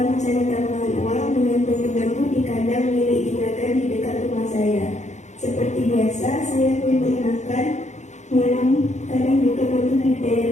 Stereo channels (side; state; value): right; late; 0.34 ms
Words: mencari tambahan uang dengan bambu-bambu di kandang milik juragan di dekat rumah saya. Seperti biasa, saya pun makan, minum, kadang juga membudidaya